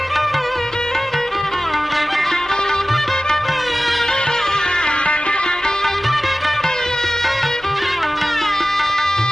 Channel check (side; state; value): both; normal; correlation 0.96